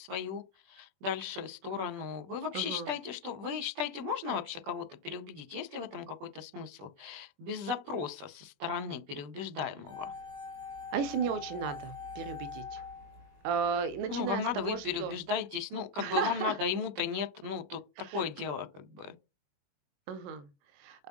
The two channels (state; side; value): late; left; 20 ms